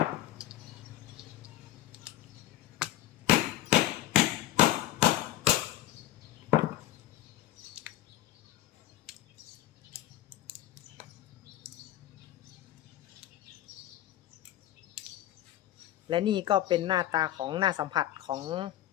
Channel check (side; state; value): right; quieter; 14.1 dB